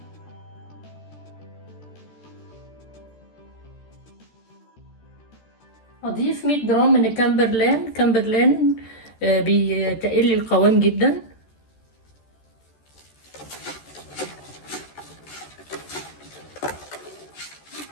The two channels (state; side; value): late; right; 13 ms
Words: هضيف 100 جرام من كامبرلان بيتقل لي القوام جدا.